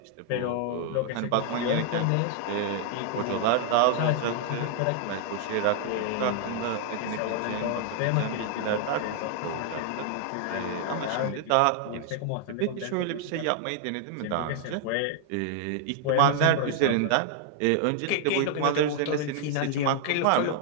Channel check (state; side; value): different; both; correlation 0.00